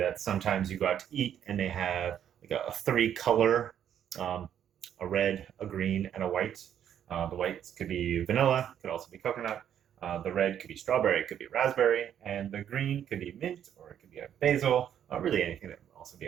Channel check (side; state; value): left; quieter; 9.6 dB